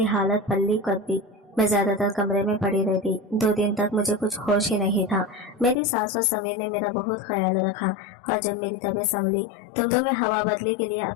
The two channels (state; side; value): drops out; right; at 5.8 s